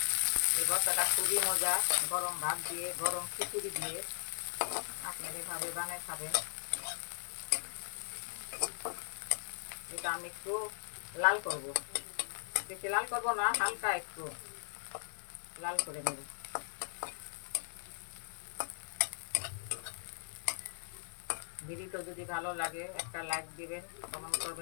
এই ভর্তাটা খুবই মজা, গরম ভাত দিয়ে, গরম খিচুড়ি দিয়ে আপনি এভাবে বানাই খাবেন। এটা আমি একটু লাল করব, বেশি লাল করব না, হালকা একটু লাল করে নেব। ভিডিওটা যদি ভালো লাগে একটা লাইক দিবেন, কমেন্ট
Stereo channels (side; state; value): right; silent; digital silence